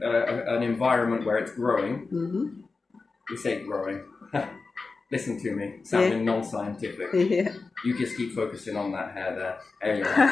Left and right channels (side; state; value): right; quieter; 4.1 dB